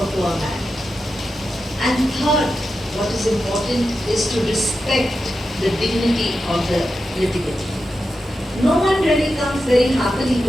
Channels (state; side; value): normal; both; correlation 0.89